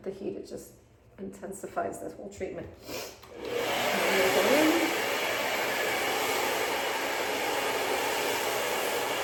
the heat, it just intensifies this whole treatment.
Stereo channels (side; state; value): both; identical; correlation 1.00